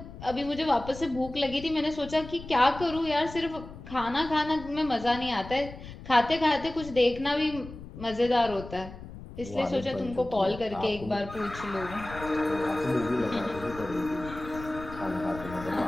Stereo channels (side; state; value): left; noise; rumble, 14 dB below the sound